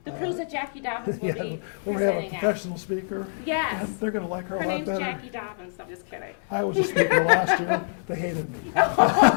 cruise that Jacqui Dobens will be when we have a presenting professional speaker. Yes. They're going to like her a lot name's better. Jacqui Dobens. I'm just kidding. I was a speaker last year. They hated me.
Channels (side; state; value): right; silent; 61 dB below the other